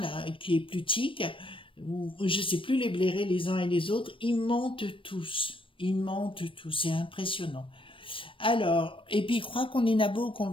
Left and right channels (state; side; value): late; right; 0.25 ms